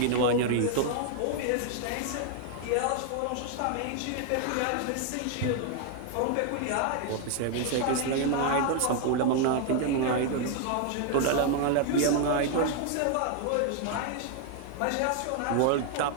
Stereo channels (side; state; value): both; different; correlation 0.00